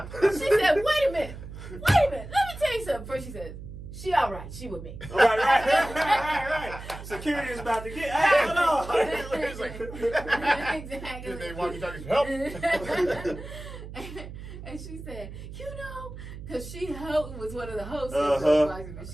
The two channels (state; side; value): noise; right; hum, 12 dB below the sound